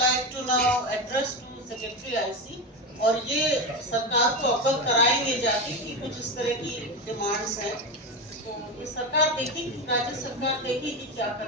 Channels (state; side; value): normal; both; correlation 0.17